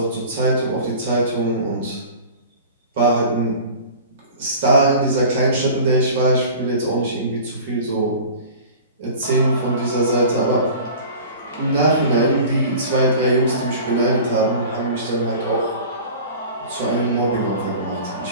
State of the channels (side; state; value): both; inverted; correlation -0.40